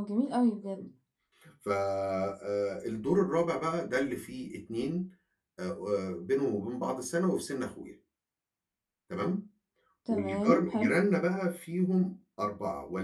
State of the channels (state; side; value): identical; both; correlation 1.00